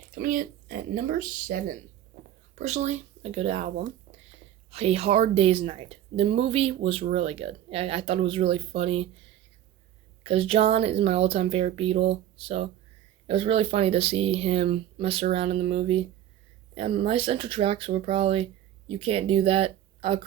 Coming in at number 7, personally, a good album, A Hard Day's Night. The movie was really good. I thought it was really funny, because John is my all-time favorite Beatle, so it was really funny to see him mess around in the movie. And my central tracks were probably You Can't Do That, I'll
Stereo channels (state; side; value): quieter; left; 11.6 dB